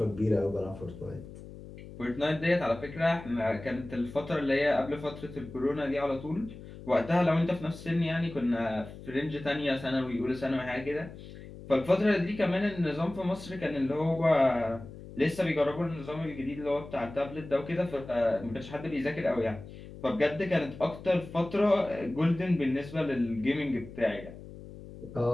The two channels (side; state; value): left; noise; hum, 15 dB below the sound